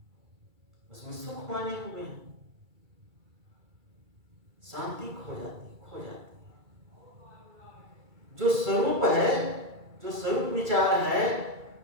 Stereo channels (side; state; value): left; late; 2.3 ms